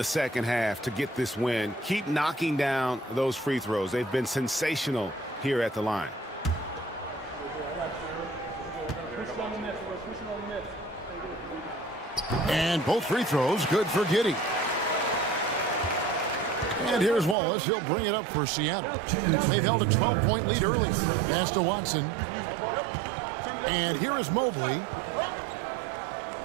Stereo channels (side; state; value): left; drops out; at 17.4 s